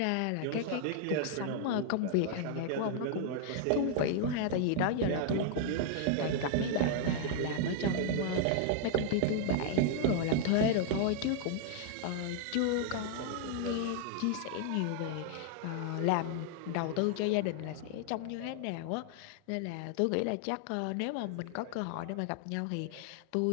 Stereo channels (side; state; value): both; different; correlation -0.01